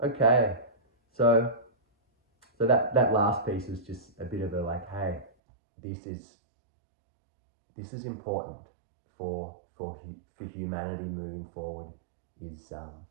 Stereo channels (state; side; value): drops out; left; at 5.3 s